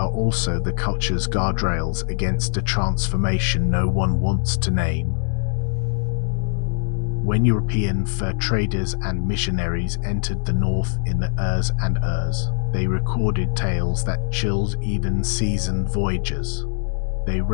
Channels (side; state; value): right; silent; digital silence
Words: also the culture's guardrails against a transformation no one wants to name. When European fur traders and missionaries entered the north in the Urs and Urs, they recorded tales that chilled even seasoned voyagers. They